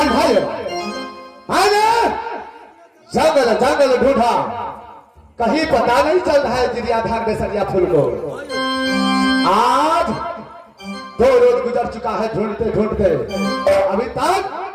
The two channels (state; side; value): identical; both; correlation 1.00